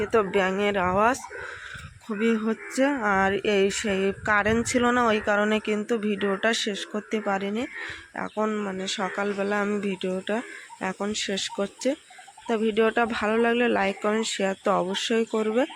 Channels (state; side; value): identical; both; correlation 1.00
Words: তো ব্যাঙের আওয়াজ খুবই হচ্ছে। আর সেই কারেন্ট ছিল না, ওই কারণে কিন্তু ভিডিওটা শেষ করতে পারিনি। এখন মানে সকালবেলা আমি ভিডিওটা এখন শেষ করছি। তা ভিডিওটা ভালো লাগলে লাইক কমেন্ট শেয়ার তো অবশ্যই করবে।